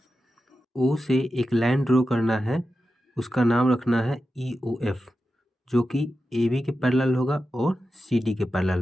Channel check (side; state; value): both; normal; correlation 0.91